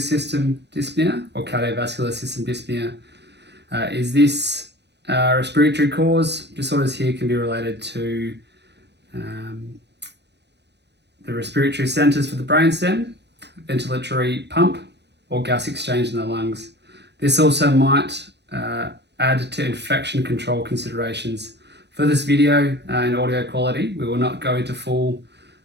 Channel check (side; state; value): left; late; 0.50 ms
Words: dyspnea or cardiovascular system dyspnea. Is this respiratory cause? Disorders here can be related to the respiratory centres for the brainstem, ventilatory pump, or gas exchange in the lungs. This also might add to infection control considerations. For this video and audio quality, we will not go into full